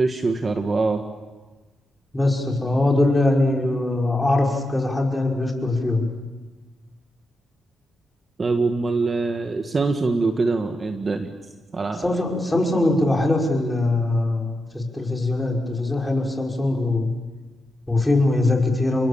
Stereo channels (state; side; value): normal; both; correlation 0.87